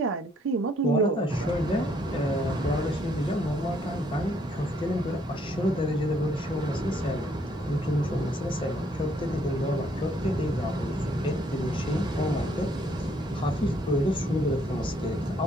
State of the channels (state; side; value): normal; both; correlation 0.68